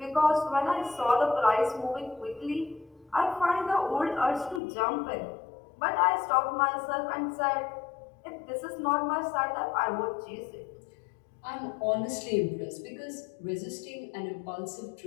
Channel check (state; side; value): drops out; right; at 4.6 s